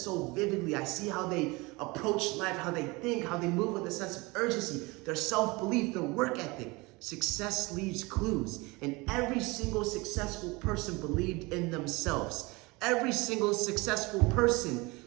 vividly. I see how they approach life, how they think, how they move with a sense of urgency, their self-belief, their work ethic. Success leaves clues, and every single successful person believed in themselves. Every single successful person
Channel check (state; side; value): quieter; left; 24.5 dB